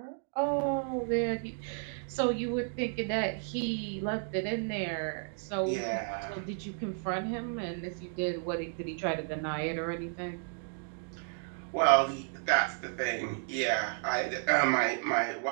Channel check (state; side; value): silent; left; 56 dB below the other